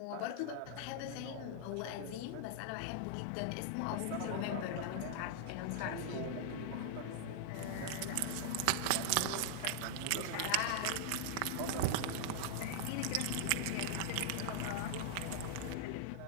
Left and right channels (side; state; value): both; different; correlation 0.00